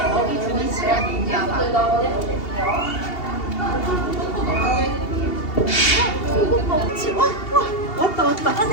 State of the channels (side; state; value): right; late; 2.8 ms